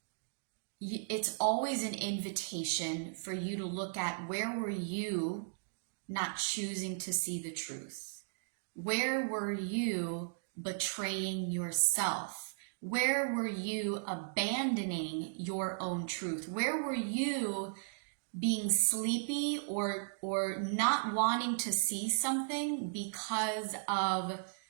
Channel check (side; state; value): left; silent; digital silence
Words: it's always an invitation for you to look at, where were you not choosing to see the truth? Where were you betraying yourself? Where were you abandoning your own truth? Where were you being sleepy or not wanting to see something because of